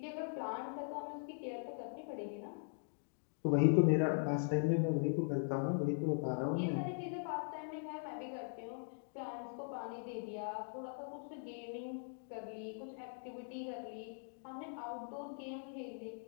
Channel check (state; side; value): silent; right; digital silence